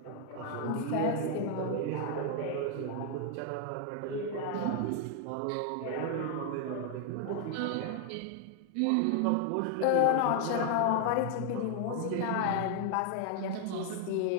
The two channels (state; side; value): different; both; correlation 0.00